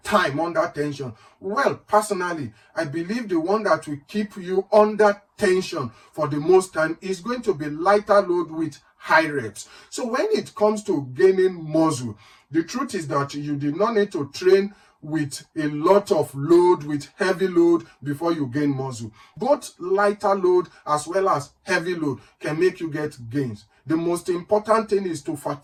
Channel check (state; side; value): identical; both; correlation 1.00